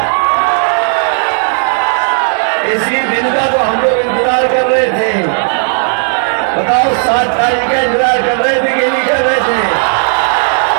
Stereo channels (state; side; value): silent; left; digital silence